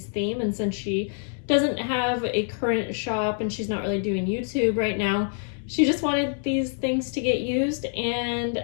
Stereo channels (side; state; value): right; silent; 61 dB below the other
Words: theme, and since she doesn't have a current shop and she's not really doing YouTube right now, she just wanted these things to get used,